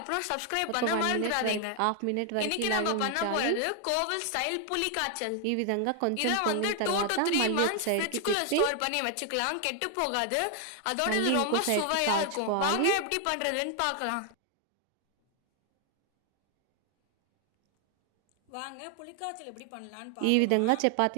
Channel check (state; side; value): different; both; correlation 0.00